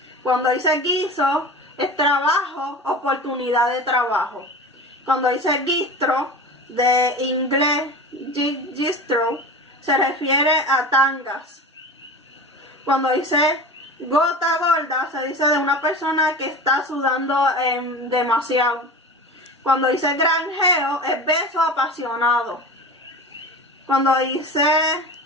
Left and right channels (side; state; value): both; normal; correlation 0.32